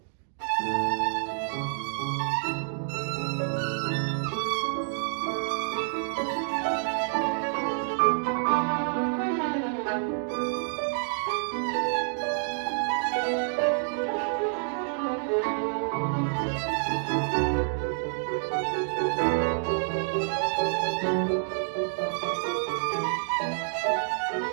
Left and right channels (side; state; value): left; silent; digital silence